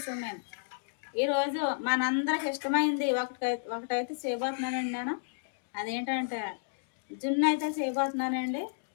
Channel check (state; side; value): silent; right; digital silence